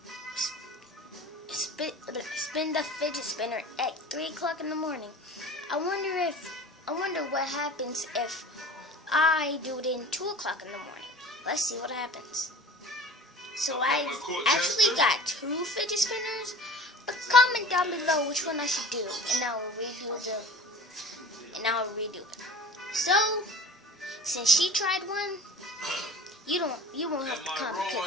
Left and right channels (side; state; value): both; normal; correlation 0.40